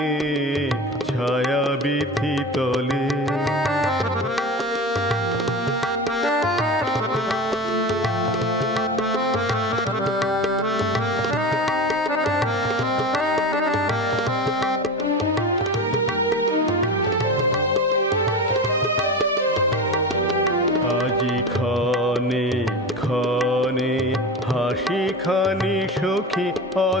ছায়া বিথি তলে। আজি ক্ষণে ক্ষণে হাসি খানি সখী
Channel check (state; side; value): normal; both; correlation 0.29